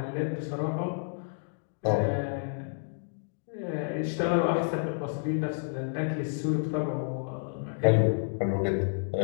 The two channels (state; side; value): silent; right; digital silence